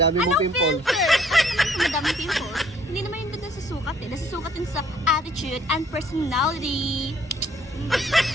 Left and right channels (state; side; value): normal; both; correlation 0.60